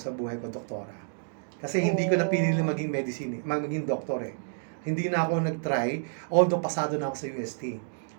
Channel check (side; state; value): left; silent; digital silence